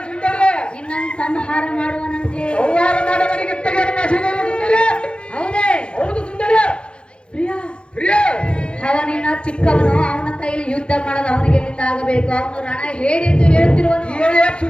ಸುಂದರಿ. ನಿನ್ನನ್ನು ಸಂಹಾರ ಮಾಡುವನಂತೆ. ಸಂಹಾರ ಮಾಡುವವನಿಗೆ ಸುಂದರಿ. ಹೌದೇ? ಹೌದು ಸುಂದರಿ. ಪ್ರಿಯ ಪ್ರಿಯ ಅವನಿನ್ನ ಚಿಕ್ಕವನು, ಅವನ ಕೈಲಿ ಯುದ್ಧ ಮಾಡೋದು ಅವನಿಗೆ ಆಗಬೇಕು. ಅವನು ರಣ ಹೇಳಿ ಎಂದು ಹೇಳುತ್ತಿರುವನು.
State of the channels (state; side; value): late; right; 0.056 ms